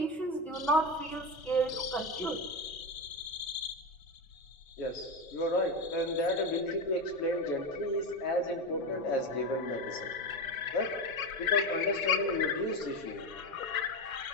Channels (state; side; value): normal; both; correlation 0.17